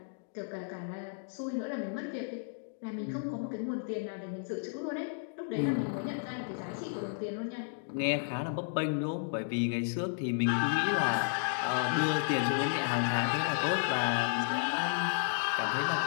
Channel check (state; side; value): silent; right; digital silence